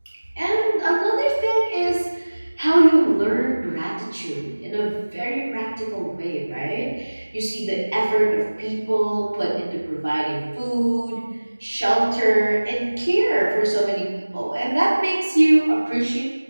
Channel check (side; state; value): both; inverted; correlation -1.00